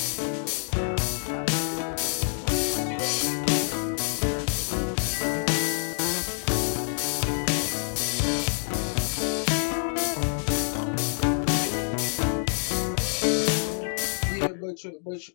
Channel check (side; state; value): right; silent; digital silence